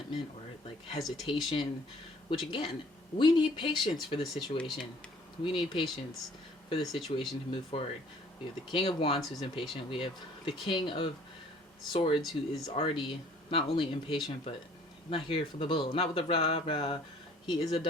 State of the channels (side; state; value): both; normal; correlation 0.55